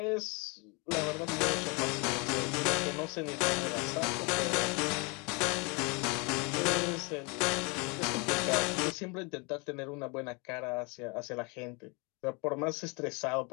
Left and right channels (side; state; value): right; quieter; 30.7 dB